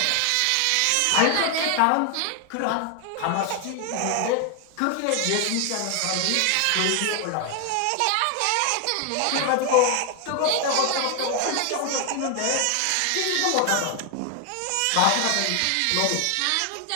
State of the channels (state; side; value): different; both; correlation 0.00